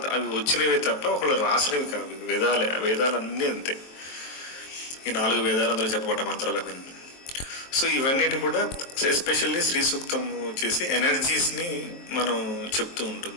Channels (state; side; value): late; right; 23 ms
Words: అవి వచ్చినవే తప్ప ఒకళ్ళు రాసినవి కావు. వేదాలన్నీ అంతే. ఈ 4 వేదాలు అందులో చెప్పబడ్డ మంత్రాలు అవన్నీ. సో ఇవన్నిటి కూడా ఎస్పెషల్లీ శ్రీ సూక్తం వచ్చేసి ఎనర్జీస్ని మనం చెప్తూ